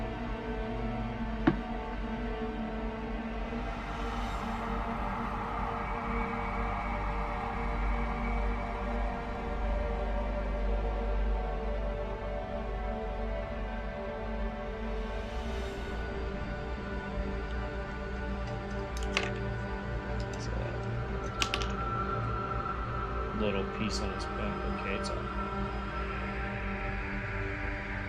Little piece on his back. Okay, it's on.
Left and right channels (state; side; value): identical; both; correlation 1.00